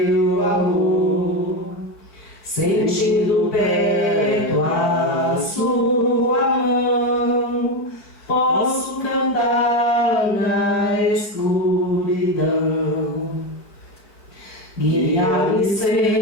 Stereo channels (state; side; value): late; right; 4.5 ms